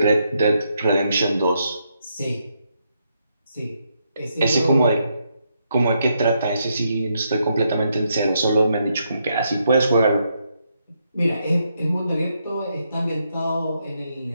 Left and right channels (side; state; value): both; inverted; correlation -0.79